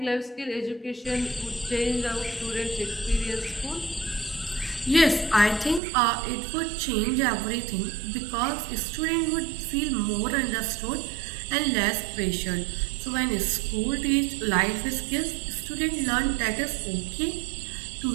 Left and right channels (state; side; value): drops out; left; at 5.8 s